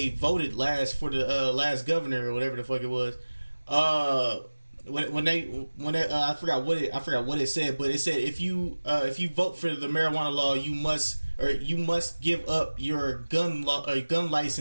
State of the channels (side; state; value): both; inverted; correlation -1.00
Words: voted last for the last governor or whatever the fuck it was, when I forgot what it said, but it said if you vote for the marijuana law, you must give up your gun